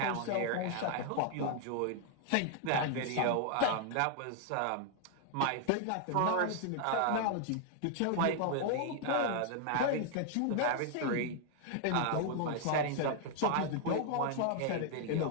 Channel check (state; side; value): different; both; correlation 0.00